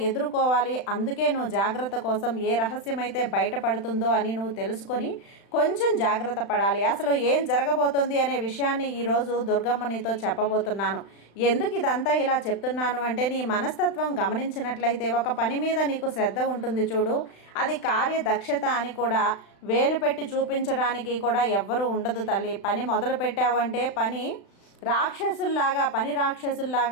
ఎదుర్కోవాలి, అందుకే నువ్వు జాగ్రత్త కోసం ఏ రహస్యమైతే బయటపడుతుందో అని నువ్వు తెలుసుకొని కొంచెం జాగ్రత్త పడాలి. అసలు ఏం జరగబోతుంది అనే విషయాన్ని ఈరోజు దుర్గమ్మ నీతో చెప్పబోతున్నాను. ఎందుకు ఇదంతా ఇలా చెప్తున్నాను అంటే, నీ మనస్తత్వం గమనించినట్లయితే ఒక పని మీద నీకు శ్రద్ధ ఉంటుంది చూడు, అది కార్యదక్షత అని కూడా వేలు పెట్టి చూపించడానికి కూడా ఎవ్వరూ ఉండదు తల్లి. పని మొదలు పెట్టావంటే పని రాక్షసుల్లాగా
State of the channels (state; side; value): late; right; 35 ms